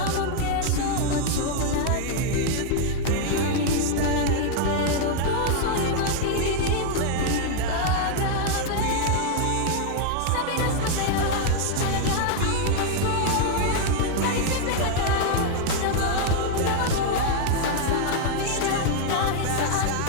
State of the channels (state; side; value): different; both; correlation 0.00